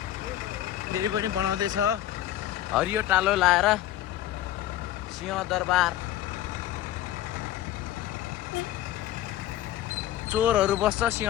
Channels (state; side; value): quieter; right; 13.3 dB